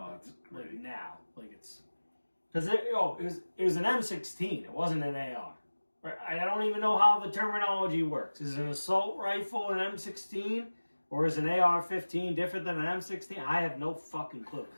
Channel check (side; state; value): both; inverted; correlation -1.00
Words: it's great. Like now, like it's because it was an M16. It wasn't an AR. Right? I don't even know how the terminology works. Is an assault rifle an M16? Or is an AR-15 different than an M16? I have no fucking clue.